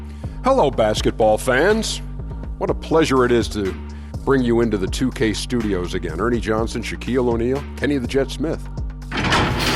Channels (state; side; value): identical; both; correlation 1.00